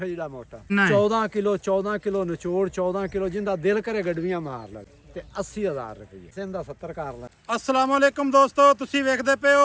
ਜਿਹੜਾ ਮੋਟਾ ਨਹੀਂ। 14 ਕਿਲੋ ਨਿਚੋੜ 14 ਕਿਲੋ ਜਿੰਦਾ ਦਿਲ ਕਰੇ ਗੜਵੀਆਂ ਮਾਰ ਲੈ ਤੇ 80000 ਰੁਪਏ ਸਿੰਦਾ 70 ਕਰ ਲੈ। अस्सलाम वालेकुम दोस्तों, ਤੁਸੀਂ ਵੇਖਦੇ ਪਏ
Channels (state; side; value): identical; both; correlation 1.00